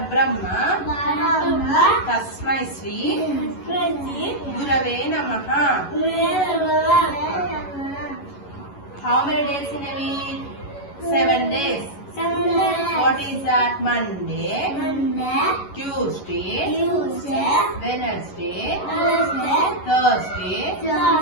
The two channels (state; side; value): late; right; 11 ms